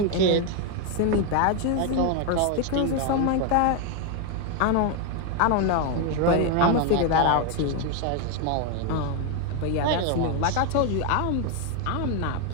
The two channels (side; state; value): both; different; correlation 0.01